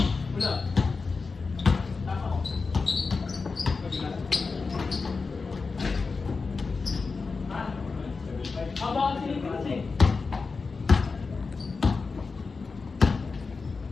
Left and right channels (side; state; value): right; quieter; 4.4 dB